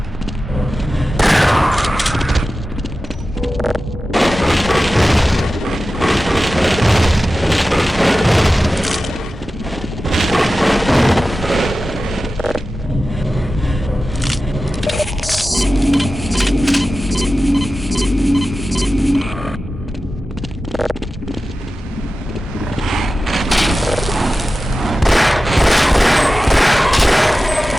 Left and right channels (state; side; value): normal; both; correlation 0.94